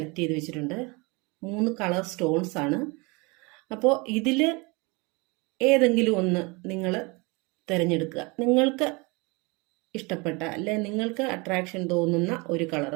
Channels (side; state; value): left; quieter; 27.6 dB